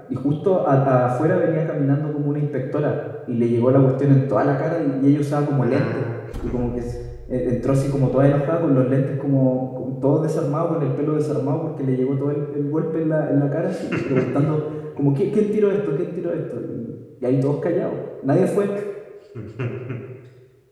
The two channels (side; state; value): both; identical; correlation 1.00